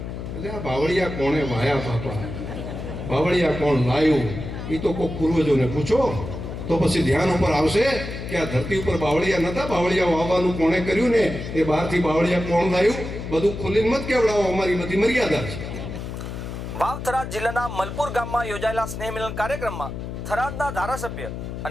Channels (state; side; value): noise; left; hum, 7 dB below the sound